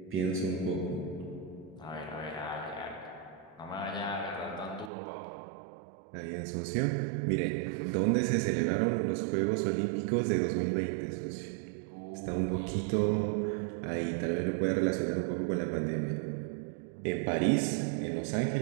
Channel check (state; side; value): drops out; left; at 4.9 s